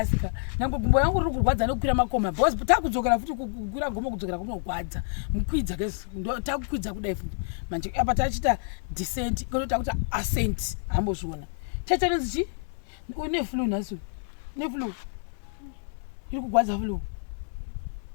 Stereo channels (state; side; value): silent; right; 58 dB below the other